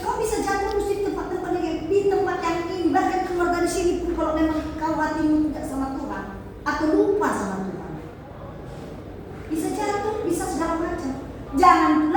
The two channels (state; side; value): identical; both; correlation 1.00